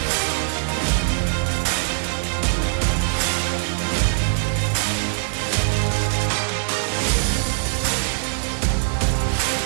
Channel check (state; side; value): silent; left; digital silence